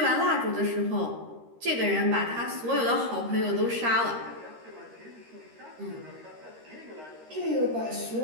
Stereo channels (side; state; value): left; late; 13 ms